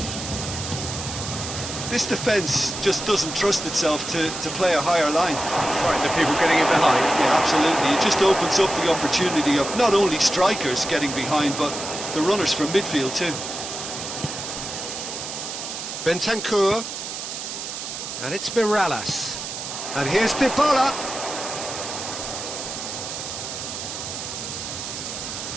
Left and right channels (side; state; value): right; noise; hiss, 7 dB below the sound